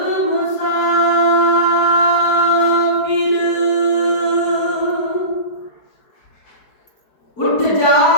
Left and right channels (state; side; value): late; right; 4.7 ms